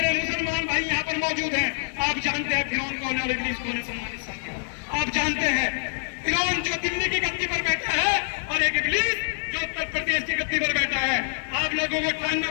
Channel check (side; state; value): right; silent; digital silence